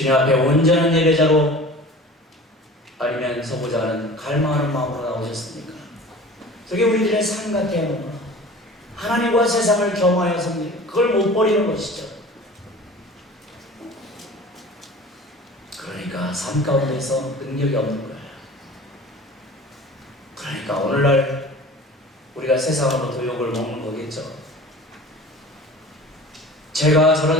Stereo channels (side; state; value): both; normal; correlation 0.41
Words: 앞에 온전한 예배자로 아니면 서보자 하는 갈망하는 마음으로 나오셨습니까? 저게 우리들의 삶 같아야 하는구나. 하나님과 세상을 겸하여 삽니다. 그걸 못 버리는 것이죠. 그러니까 삶 가운데서 능력이 없는 거예요. 그러니까 오늘날 우리가 세상으로부터 욕을 먹는 거겠죠. 제가